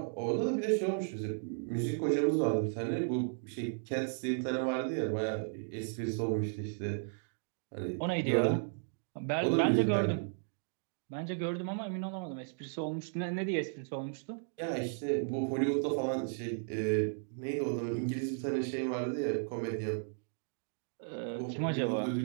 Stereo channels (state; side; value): silent; left; digital silence